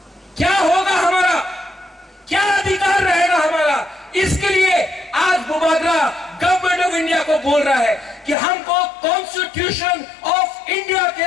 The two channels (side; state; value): right; drops out; at 8.3 s